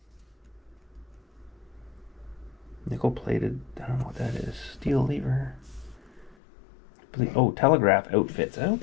Nickel plated. I don't know what that is. Steel lever. Oh, telegraph outfits.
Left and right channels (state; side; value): drops out; right; at 6.4 s